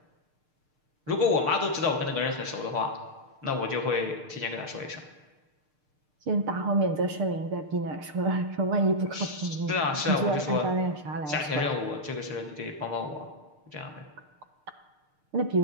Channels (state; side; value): late; left; 6.6 ms